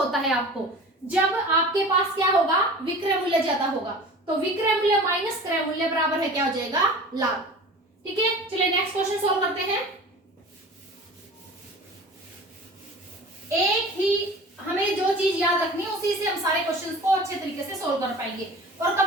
है आपको, जब आपके पास क्या होगा, विक्रय मूल्य ज्यादा होगा। तो विक्रय मूल्य माइनस क्रय मूल्य बराबर है क्या हो जाएगा, लाभ। ठीक है, चलिए नेक्स्ट क्वेश्चन सोल्व करते हैं। एक ही हमें जो चीज याद रखनी है उसी से हम सारे क्वेश्चंस को अच्छे तरीके से सोल्व कर पाएंगे और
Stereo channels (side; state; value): both; normal; correlation 0.39